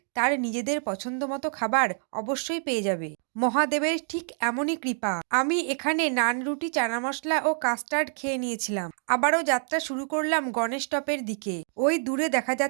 তার নিজেদের পছন্দমতো খাবার অবশ্যই পেয়ে যাবে। মহাদেবের ঠিক এমনই কৃপা। আমি এখানে নান, রুটি, চানা মশলা ও কাস্টার্ড খেয়ে নিয়েছিলাম। আবারও যাত্রা শুরু করলাম গণেশ টপের দিকে। ওই দূরে দেখা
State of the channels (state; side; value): silent; left; 59 dB below the other